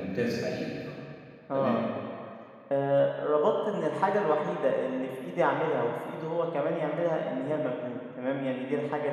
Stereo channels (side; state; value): both; identical; correlation 1.00